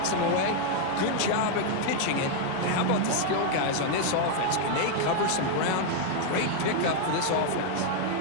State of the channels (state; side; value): different; both; correlation 0.00